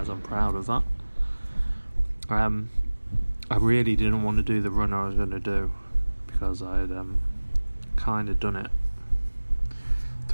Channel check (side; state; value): both; inverted; correlation -1.00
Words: I'm proud of that. I really didn't want to do the run I was going to do because I had kind of done it